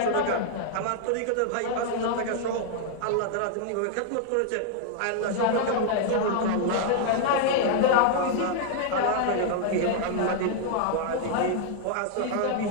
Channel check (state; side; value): different; both; correlation -0.01